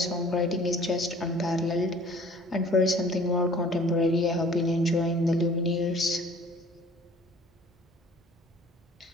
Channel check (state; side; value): normal; both; correlation 0.51